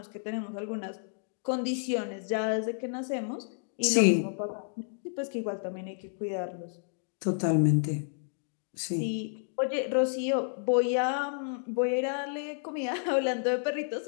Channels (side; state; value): right; silent; digital silence